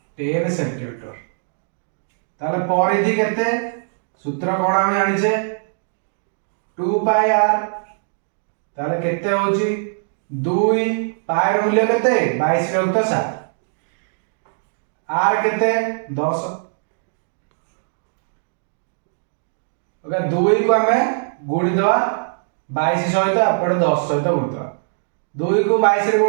10 सेंटीमीटर। ताले परिधि केते सूत्र कोन हम जानि छे 2 पाई आर। ताले केते होछि 2 पाई र मूल्य केते 22 विभक्त 7 आर केते 10। ओके 2 को हमें गुणी दवा 22 सहित अपन 10 सहित गुणी दवा 2 को 22 रे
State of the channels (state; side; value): silent; left; digital silence